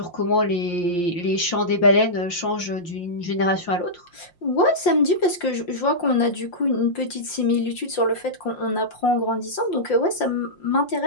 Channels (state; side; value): late; right; 5.7 ms